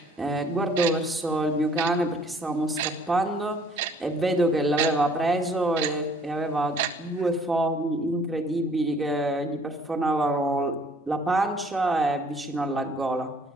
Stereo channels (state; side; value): normal; both; correlation 0.58